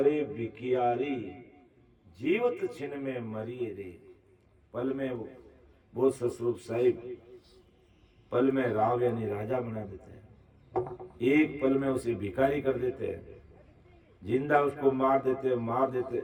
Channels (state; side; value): identical; both; correlation 1.00